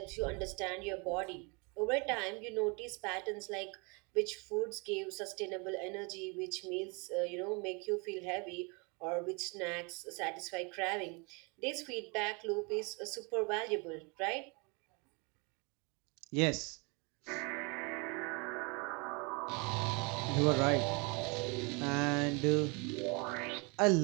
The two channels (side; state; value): left; quieter; 31.0 dB